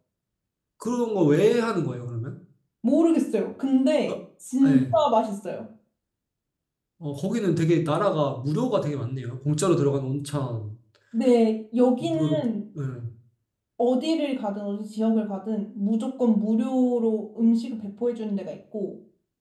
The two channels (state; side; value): identical; both; correlation 1.00